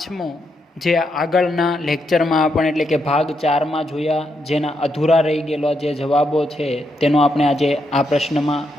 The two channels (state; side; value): normal; both; correlation 0.81